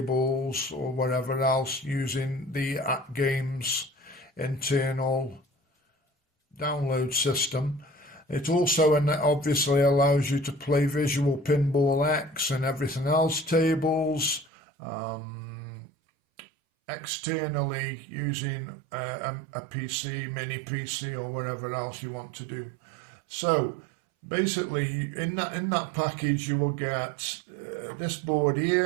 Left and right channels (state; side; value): drops out; left; at 14.5 s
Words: or whatever else using the AtGames internal download system. It also obviously allows you to play Visual Pinball X and everything else tables externally using a PC, mini PC or whatever else you want to do. So basically, in that package, you will get this board